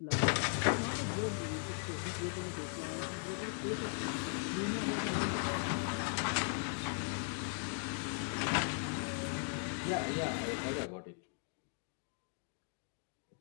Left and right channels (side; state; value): right; silent; 52 dB below the other